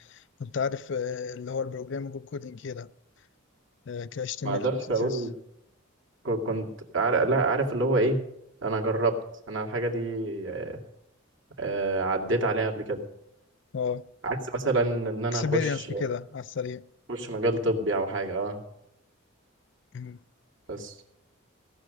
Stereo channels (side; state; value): both; normal; correlation 0.05